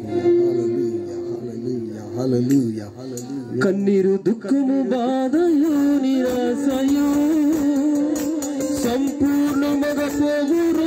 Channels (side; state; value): both; identical; correlation 1.00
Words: హల్లెలూయా, హల్లెలూయా, హల్లెలూయా. కన్నీరు, దుఃఖము, బాధయు, నిరాశయు సంపూర్ణముగా పోవు